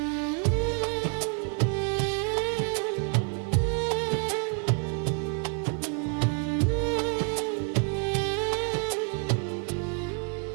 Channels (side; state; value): left; quieter; 39.3 dB